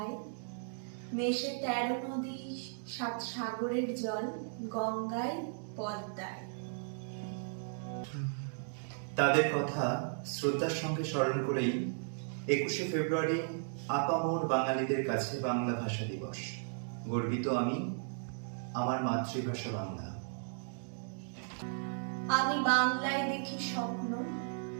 মেশে 13 নদী 7 সাগরের জল গঙ্গায় পদ্মায়। তাদের কথা শ্রদ্ধার সঙ্গে স্মরণ করেই 21শে ফেব্রুয়ারি আপামর বাঙালিদের কাছে বাংলা ভাষা দিবস। গর্বিত আমি, আমার মাতৃভাষা বাংলা। আমি বাংলায় দেখি স্বপ্ন,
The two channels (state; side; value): silent; left; digital silence